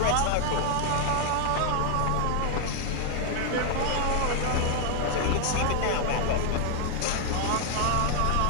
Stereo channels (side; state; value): both; different; correlation 0.00